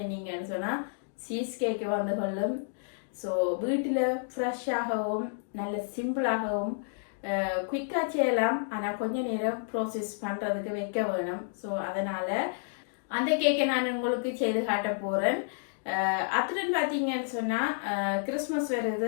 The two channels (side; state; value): right; silent; digital silence